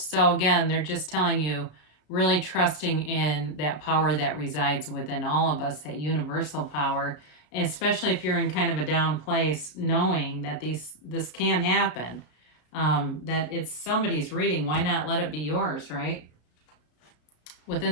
So again, they're just telling you really trusting in that power that resides within all of us, that universal power, especially if you're in kind of a down place, knowing that this can happen, that it's somebody's reading. Why not let it be yours, right?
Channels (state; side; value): late; right; 33 ms